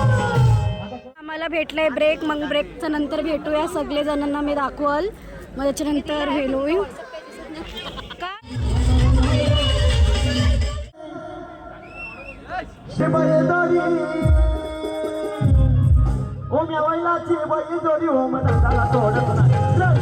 आम्हाला भेटलंय ब्रेक, मग ब्रेकच्या नंतर भेटूया सगळे जणांना मी दाखवल, मग त्याच्यानंतर हे होईल का ओम या वैलाची बैल जोडी ओम दादाला तोडत नाही जय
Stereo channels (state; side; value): identical; both; correlation 1.00